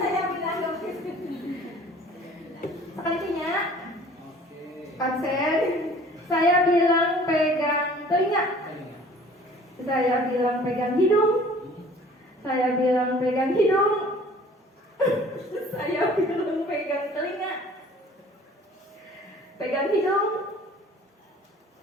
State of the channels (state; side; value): normal; both; correlation 0.50